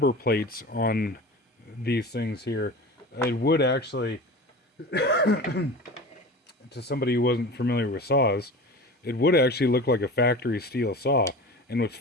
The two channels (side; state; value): both; normal; correlation 0.33